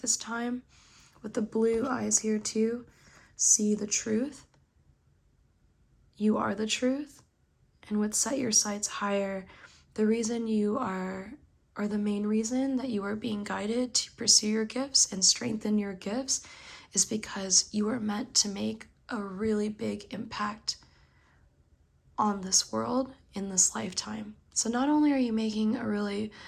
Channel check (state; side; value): identical; both; correlation 1.00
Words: time. With the blue eyes here too, see the truth. You are the truth. And with set your sights higher, the reason you are, or the main reason that you are being guided to pursue your gifts and strengthen your gifts is because you are meant to make a really big impact on this world in this lifetime. So not only are you making a really